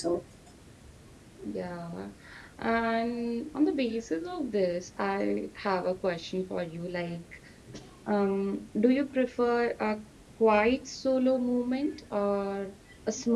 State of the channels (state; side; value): identical; both; correlation 1.00